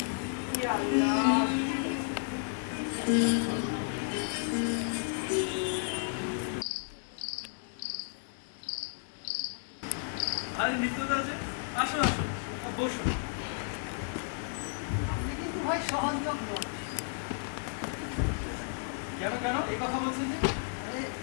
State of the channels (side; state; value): right; silent; digital silence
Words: কি আল্লাহ। আরে মিত্রদা যে, আসো আসো, বসো। আপনি কিন্তু ভাই সহযোগ নন। কেন কেন এই কথা বলছেন যে? আরে